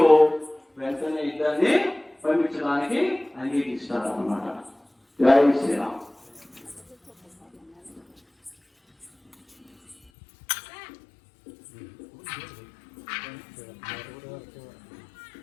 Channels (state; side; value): drops out; right; at 10.0 s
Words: వెంటనే ఇద్దరిని పంపించడానికి అంగీకరిస్తాడు అన్నమాట. జై శ్రీరామ్.